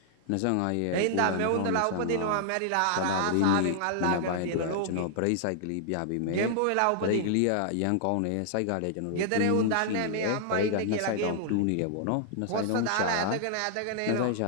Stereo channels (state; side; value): different; both; correlation -0.01